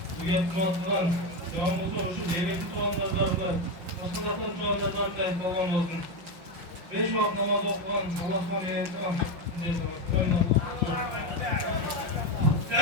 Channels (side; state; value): left; late; 5.7 ms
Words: bu yetmezden, yağmurda uçup devletli soğanlardan, başkalardan soğanlardan kayıp olan olsun. 5 vakit namaz okuyan, Allah'a meyilkan.